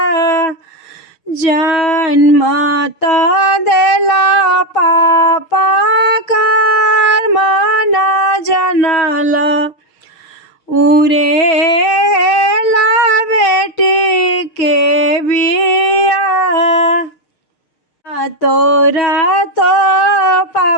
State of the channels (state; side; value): late; right; 6.5 ms